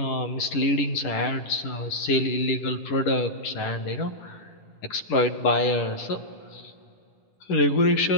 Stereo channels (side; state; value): right; late; 10 ms